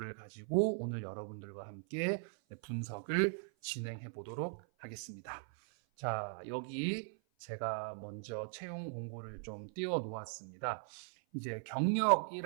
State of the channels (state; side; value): silent; left; 51 dB below the other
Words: 가지고 오늘 여러분들과 함께 분석을 진행해 보도록 하겠습니다. 자, 여기 제가 먼저 채용 공고를 좀 띄워 놓았습니다. 이제